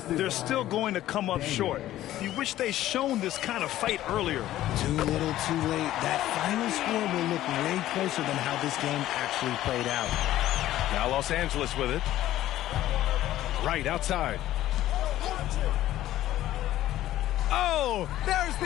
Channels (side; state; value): right; quieter; 13.9 dB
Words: they're still going to come up short. You wish they shown this kind of fight earlier. Too little, too late. That final score will look way closer than how this game actually played out. Now Los Angeles with it. Right outside. Oh, there's